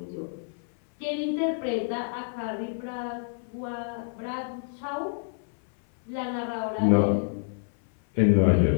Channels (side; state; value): right; silent; 60 dB below the other